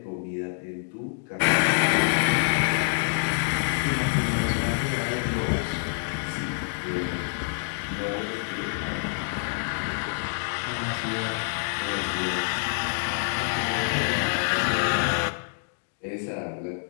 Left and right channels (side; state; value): right; silent; digital silence